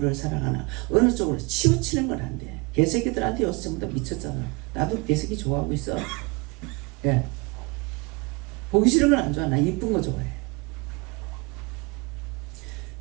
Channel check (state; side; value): quieter; left; 27.3 dB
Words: 사랑하나 어느 쪽으로 치우치는 건 안 돼. 개새끼들한테 요새 전부 다 미쳤잖아. 나도 개새끼 좋아하고 있어. 예. 보기 싫은 건 안 좋아. 나 이쁜 거 좋아해.